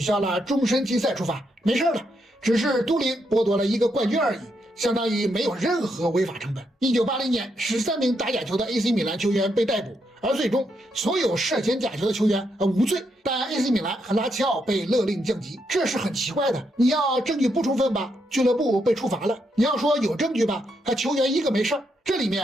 消了终身禁赛处罚，没事了，只是都灵剥夺了一个冠军而已，相当于没有任何违法成本。1980年13名打假球的 AC 米兰球员被逮捕，而最终所有涉嫌假球的球员无罪，但 AC 米兰和拉齐奥被勒令降级，这是很奇怪的。你要证据不充分吧，俱乐部被处罚了；你要说有证据吧，球员一个没事儿。这里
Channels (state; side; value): normal; both; correlation 0.79